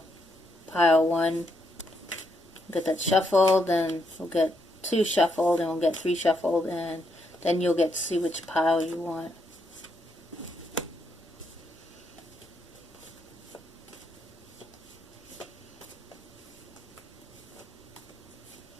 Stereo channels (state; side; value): normal; both; correlation 0.77